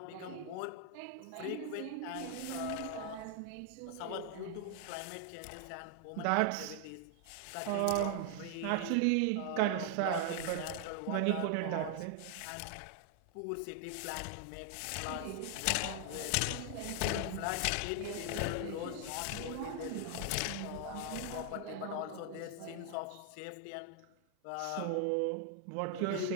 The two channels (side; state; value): both; different; correlation 0.00